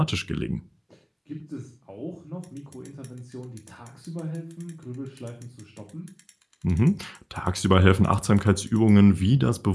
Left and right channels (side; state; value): both; identical; correlation 1.00